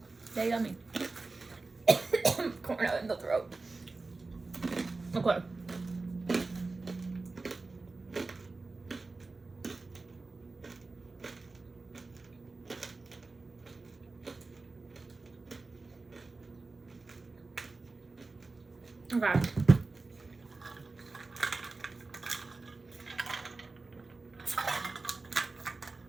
They're yummy. Corn nut in the throat. Okay. Okay.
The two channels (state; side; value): quieter; left; 3.6 dB